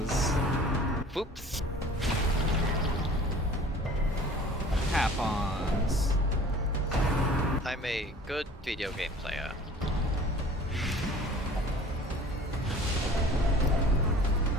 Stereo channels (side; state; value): both; normal; correlation 0.47